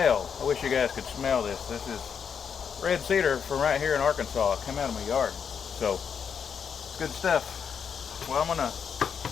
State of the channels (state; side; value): quieter; right; 7.0 dB